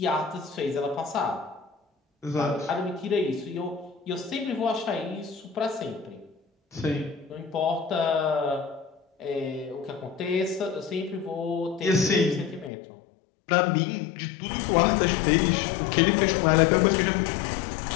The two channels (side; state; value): right; drops out; at 12.7 s